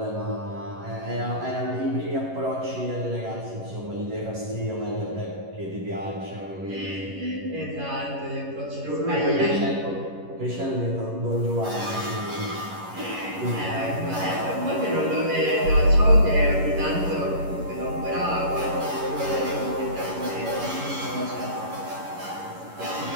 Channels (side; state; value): left; late; 11 ms